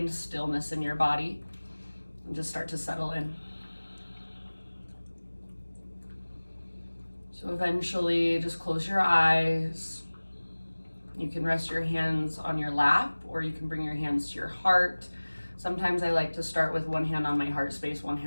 stillness in your body and just start to settle in. So eventually just close your eyes. You can rest your hands on your lap, or you can bring your hands to your heart. Sometimes I like to start with one hand on my heart space, one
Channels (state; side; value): inverted; both; correlation -1.00